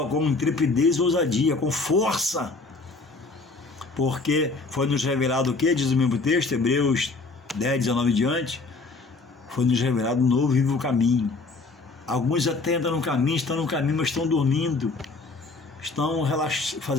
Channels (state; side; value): quieter; right; 3.7 dB